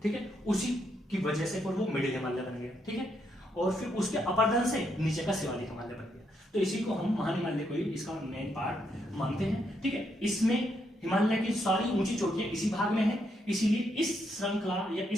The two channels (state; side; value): normal; both; correlation 0.77